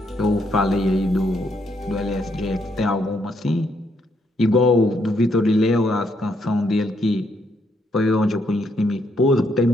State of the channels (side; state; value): both; normal; correlation 0.74